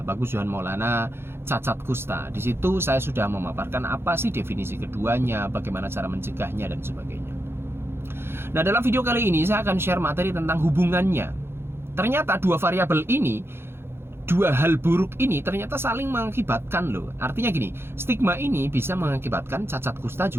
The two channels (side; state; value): left; late; 0.11 ms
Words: Johan Maulana cacat kusta. Di situ saya sudah memaparkan apa sih definisi keduanya, bagaimana cara mencegahnya dan sebagainya. Nah, dalam video kali ini saya akan share materi tentang hubungannya. Ternyata dua variabel ini, dua hal buruk ini ternyata saling mengakibatkan loh. Artinya gini, stigma ini bisa mengakibatkan cacat kusta